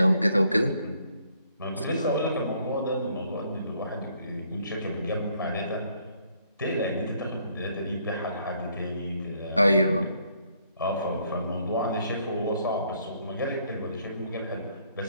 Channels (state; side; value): inverted; both; correlation -0.68